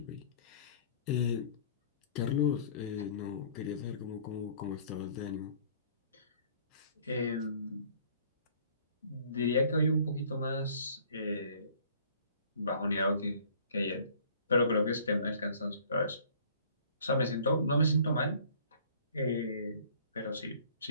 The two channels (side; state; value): both; inverted; correlation -0.54